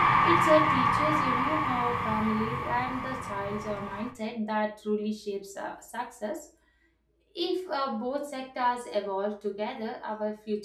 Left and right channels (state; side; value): identical; both; correlation 1.00